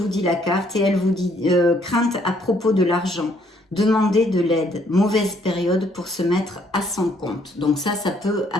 dit la carte et elle vous dit crainte à propos de l'argent, demander de l'aide, mauvaise période pour se mettre à son compte. Donc ça peut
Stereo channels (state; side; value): normal; both; correlation 0.66